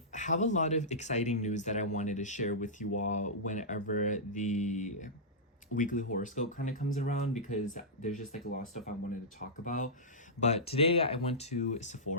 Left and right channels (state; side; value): normal; both; correlation -0.14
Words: have a lot of exciting news that I wanted to share with you all whenever the weekly horoscope kind of comes around, because there's just like a lot of stuff I wanted to talk about. But today I went to